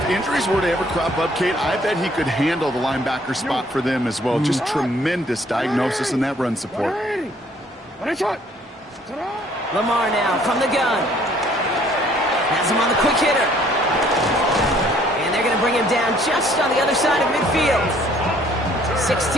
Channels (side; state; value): both; normal; correlation 0.61